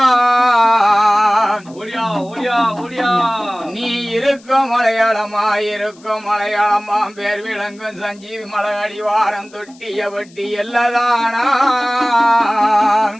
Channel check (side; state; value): left; noise; hiss, 27 dB below the sound